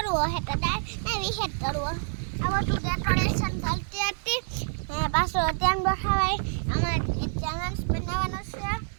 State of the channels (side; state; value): left; silent; 60 dB below the other